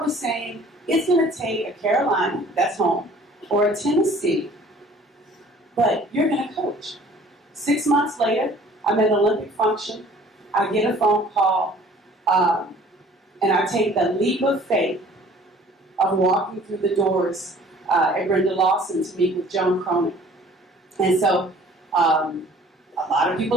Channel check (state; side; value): normal; both; correlation 0.52